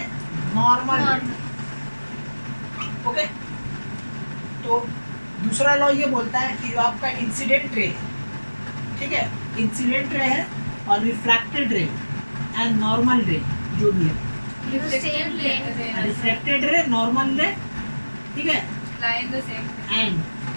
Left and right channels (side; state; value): both; inverted; correlation -1.00